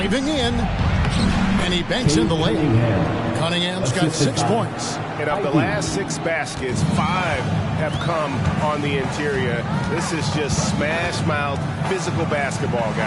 in. And he banks in the layup. Cunningham's got 6 points. And of the last 6 baskets, 5 have come on the interior. This is just smash-mouth physical basketball,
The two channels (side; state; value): both; identical; correlation 1.00